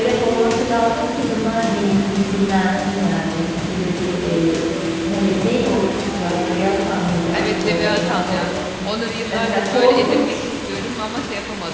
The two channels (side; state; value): both; identical; correlation 1.00